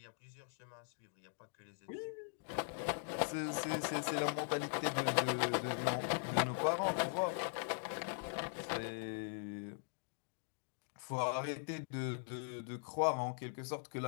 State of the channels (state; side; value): silent; right; digital silence